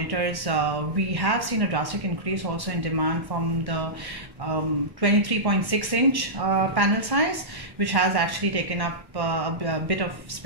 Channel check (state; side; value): late; left; 1.1 ms